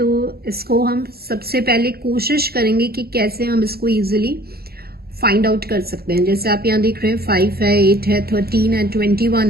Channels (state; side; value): late; left; 0.45 ms